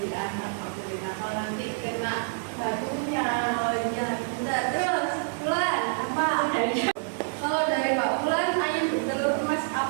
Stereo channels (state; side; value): silent; left; digital silence